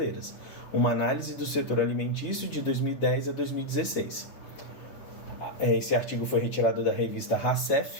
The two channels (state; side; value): late; right; 7.4 ms